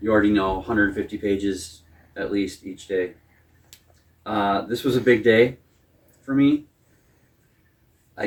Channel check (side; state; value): both; identical; correlation 1.00